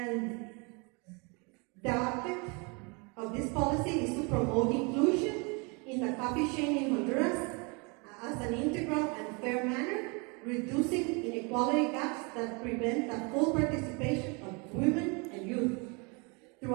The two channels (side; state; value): left; quieter; 31.2 dB